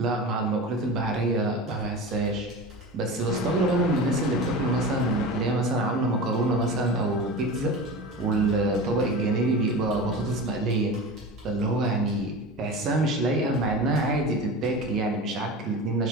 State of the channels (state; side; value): normal; both; correlation 0.30